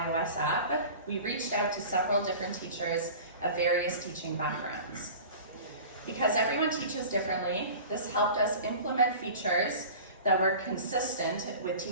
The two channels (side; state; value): both; inverted; correlation -0.38